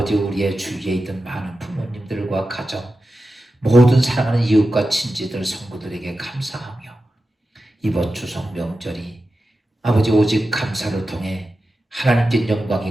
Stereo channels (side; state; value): both; normal; correlation 0.92